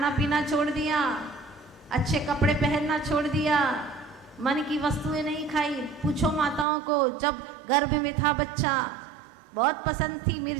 पीना छोड़ दिया, अच्छे कपड़े पहनना छोड़ दिया, मन की वस्तुएं नहीं खाई। पूछो माताओं को, जब गर्भ में था बच्चा, बहुत पसंद थी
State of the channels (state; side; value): drops out; left; at 6.7 s